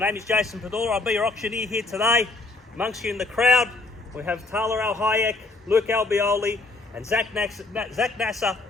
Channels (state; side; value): quieter; right; 3.3 dB